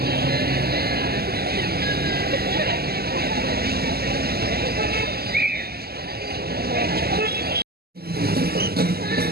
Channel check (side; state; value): left; late; 0.46 ms